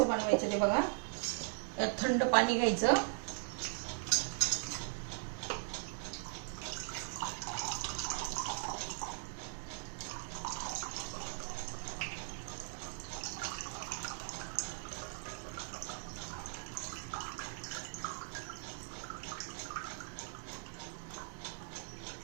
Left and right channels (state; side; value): silent; left; 52 dB below the other